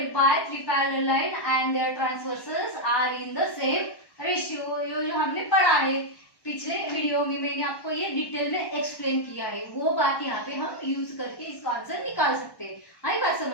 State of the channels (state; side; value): late; right; 1.1 ms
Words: by 3 parallel line and their transversals are in the same ratio। जो हमने पढ़ा है पिछले वीडियो में, मैंने आपको ये डिटेल में एक्सप्लेन किया है, वो बात यहाँ पे हम यूज करके इसका आंसर निकाल सकते हैं। आई बात